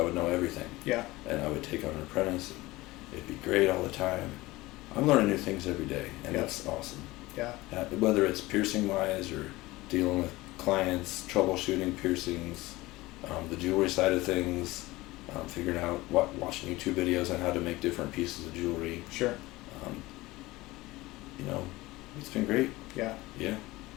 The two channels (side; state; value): right; quieter; 19.8 dB